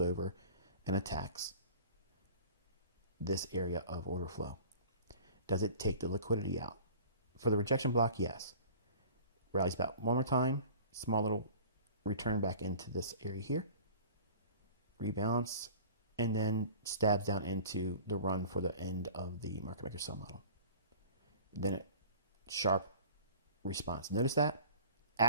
and attacks this area of order flow. Does it take the liquidity out? For the rejection block, yes. Rallies back one more time, small little return back into this area here, rebalance, and then stabs down into the run for the end of the market maker sell model. Then it sharp response. Notice that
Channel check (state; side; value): inverted; both; correlation -0.43